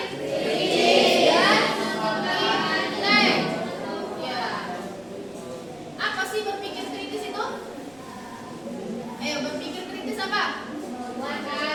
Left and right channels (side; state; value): right; noise; rumble, 28 dB below the sound